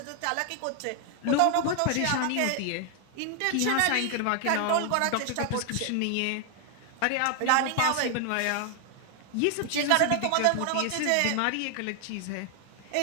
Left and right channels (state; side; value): different; both; correlation 0.00